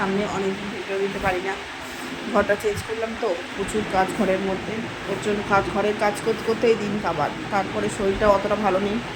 অনেক ভিডিও দিতে পারি না। ঘরটা চেঞ্জ করলাম তো, প্রচুর কাজ ঘরের মধ্যে। ওর জন্য ঘরের কাজ করতে করতেই দিন কাবার। তারপরে শরীরটা অতটা ভালো নেই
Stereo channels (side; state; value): both; identical; correlation 1.00